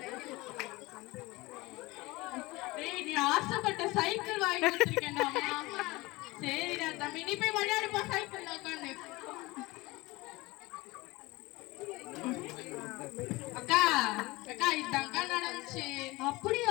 டேய் நீ ஆசைப்பட்ட சைக்கிள் வாங்கி கொடுத்துருக்கேன்டா. சரிடா தம்பி, நீ போய் விளையாடுப்பா சைக்கிள்ல உட்காந்து. அக்கா அக்கா இதாங்க நடந்துச்சு.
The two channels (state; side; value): quieter; right; 21.5 dB